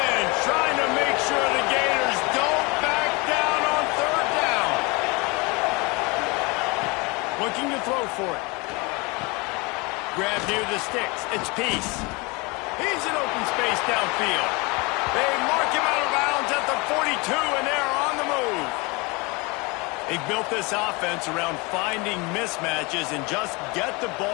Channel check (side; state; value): right; quieter; 27.0 dB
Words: trying to make sure the Gators don't back down on 3rd down. Looking to throw for it. Grab near the sticks. It's Peace. He's in open space downfield. They mark him out of bounds at the 42, and they're on the move. They built this offense around finding mismatches and just get the